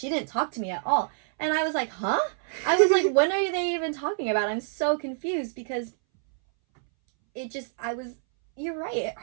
didn't talk to me at all, and I was like, huh? I was like, when are they even talking about? I'm so confused because it just you're right. It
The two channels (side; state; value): left; silent; 60 dB below the other